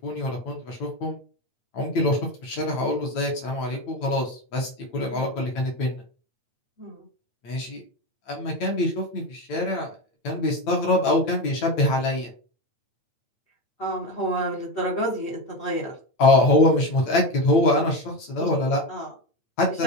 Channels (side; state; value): right; late; 8.9 ms